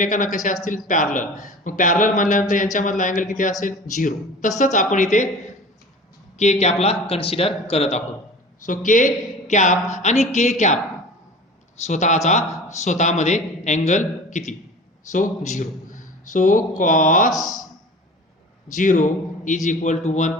कसे असतील पॅरलल. मग पॅरलल म्हणल्यानंतर यांच्यामधला अँगल किती असेल 0. तसंच आपण इथे के कॅपला कन्सिडर करत आहोत. सो के कॅप आणि के कॅप स्वतःमध्ये अँगल किती, so 0. So cos 0 is equal to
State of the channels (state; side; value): normal; both; correlation 0.39